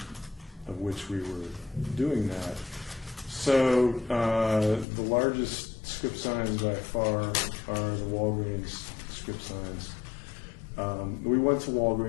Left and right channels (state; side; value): drops out; right; at 4.9 s